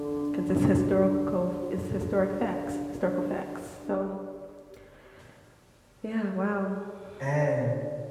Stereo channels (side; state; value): both; identical; correlation 1.00